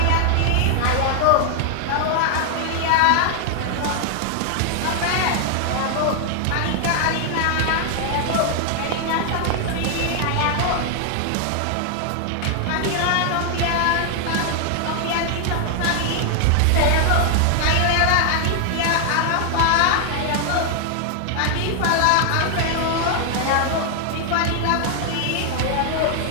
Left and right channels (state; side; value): different; both; correlation 0.00